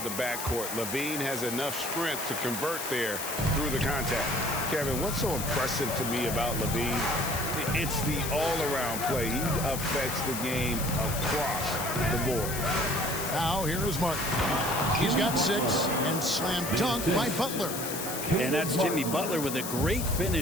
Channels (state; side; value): noise; left; hiss, 6 dB below the sound